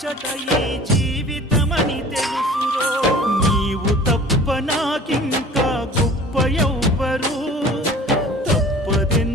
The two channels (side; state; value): both; normal; correlation 0.45